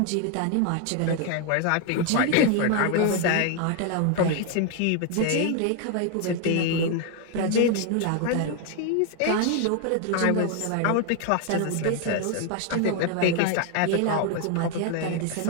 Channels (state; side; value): different; both; correlation 0.01